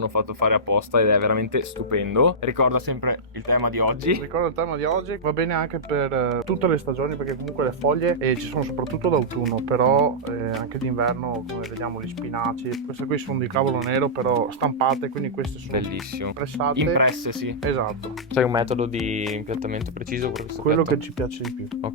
fatto fare apposta ed è veramente stupendo. Ricorda sempre il tema di oggi. Ricordo il tema di oggi, va bene anche per tutte le stagioni perché comunque le foglie ci sono soprattutto d'autunno, però anche d'inverno, come vediamo, gli spinaci. Queste qui sono di cavolo nero però stampate, quindi queste sono Bellissimo. pressate. Impresse, sì. Esatto, C'hai un metodo di impiattamento preciso per questo quello piatto? che ci piace di più.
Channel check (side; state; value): both; normal; correlation -0.12